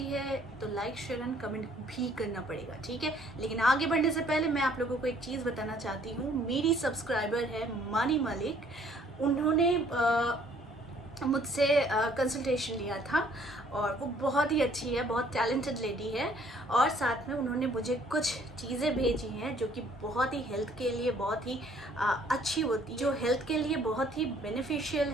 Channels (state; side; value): normal; both; correlation 0.61